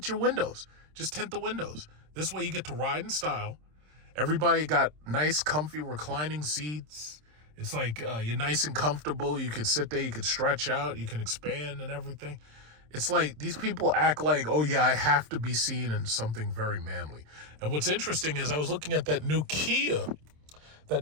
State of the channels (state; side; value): late; left; 26 ms